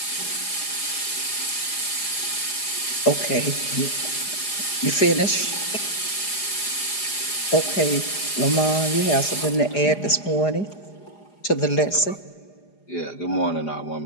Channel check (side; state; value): right; late; 4.9 ms